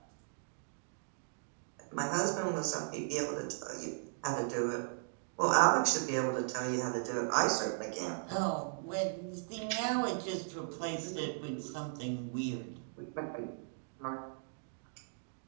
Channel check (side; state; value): left; silent; digital silence